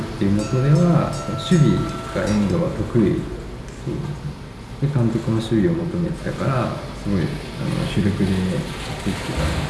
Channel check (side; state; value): both; identical; correlation 1.00